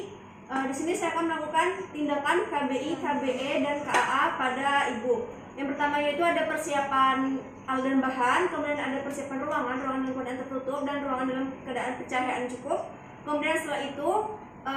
Di sini saya akan melakukan tindakan KBI, KBE, dan KAA pada ibu. Yang pertama yaitu ada persiapan alat dan bahan, kemudian ada persiapan ruangan dalam keadaan tertutup dan ruangan dalam keadaan pencahayaan cukup. Kemudian setelah itu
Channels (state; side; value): identical; both; correlation 1.00